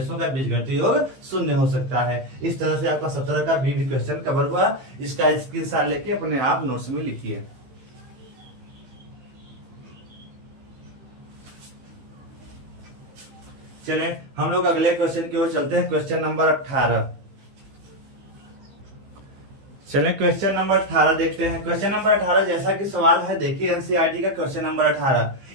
का बीजगणितीय योग शून्य हो सकता है। इस तरह से आपका 17 का भी क्वेश्चन कवर हुआ। इसका स्क्रीनशॉट लेके अपने आप नोट्स में लिखिए। चलें हम लोग अगले क्वेश्चन की ओर चलते हैं। Question number 18। चलें क्वेश्चन नंबर 18 देखते हैं। क्वेश्चन नंबर 18 जैसा कि सवाल है, देखिए एनसीईआरटी का क्वेश्चन नंबर 18।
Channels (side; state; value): left; late; 15 ms